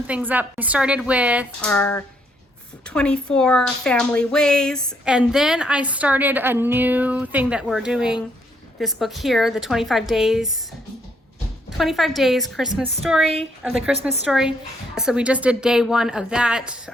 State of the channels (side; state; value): both; normal; correlation 0.72